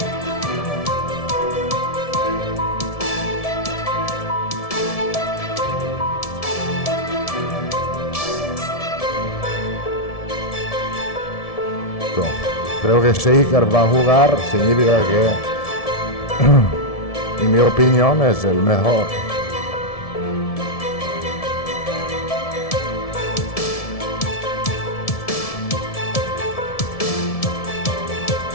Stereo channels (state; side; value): late; right; 1.7 ms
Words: Creo que si Iker va a jugar significa que, en mi opinión, es el mejor.